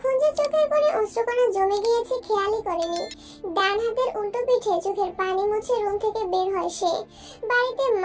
যে চোখের কোণে অশ্রুকণা জমে গিয়েছে খেয়ালই করেনি। ডান হাতের উল্টো পিঠে চোখের পানি মুছে রুম থেকে বের হয় সে। বাড়িতে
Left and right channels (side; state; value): both; identical; correlation 1.00